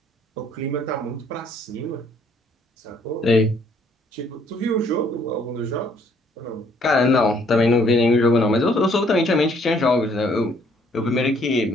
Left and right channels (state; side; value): normal; both; correlation 0.64